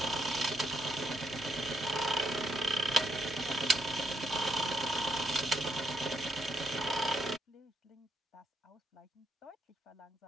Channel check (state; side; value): normal; both; correlation 0.77